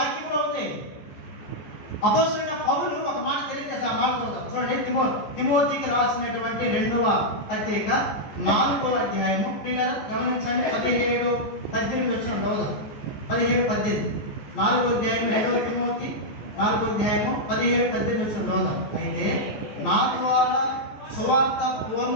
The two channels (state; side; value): late; right; 14 ms